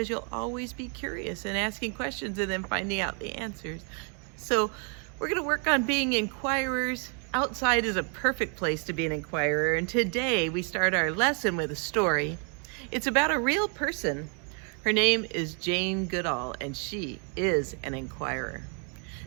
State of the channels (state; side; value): quieter; left; 39.9 dB